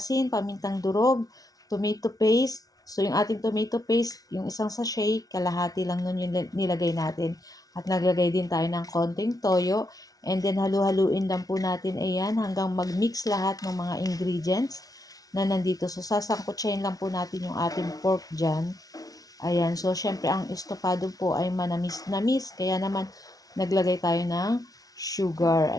pamintang durog, tomato paste. So, yung ating tomato paste, yung isang sachet, kalahati lang nun yung nilagay natin. At naglagay din tayo ng konting toyo. And then, halu-haluin lang po natin, ayan, hanggang mag-mix lahat ng mga ingredients na nandito. So, sasangkutsahin lang po natin yung ating pork dyan. Ayan, so, syempre, ang estofado po ay manamis-namis. Kaya naman, naglagay tayo ng sugar.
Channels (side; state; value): right; late; 0.18 ms